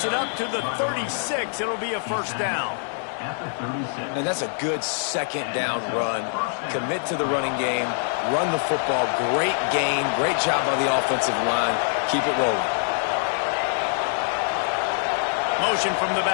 it up to the 36. It'll be a first down. And that's a good second down run. Commit to the running game. Run the football. Great gain. Great job by the offensive line. Keep it rolling. Motion from the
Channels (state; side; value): silent; right; 62 dB below the other